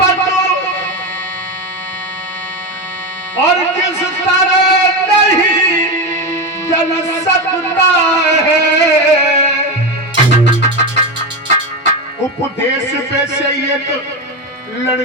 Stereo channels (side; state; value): both; normal; correlation 0.16